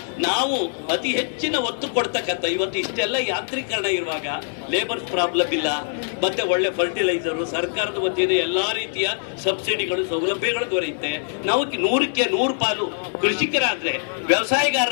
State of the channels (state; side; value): silent; right; 62 dB below the other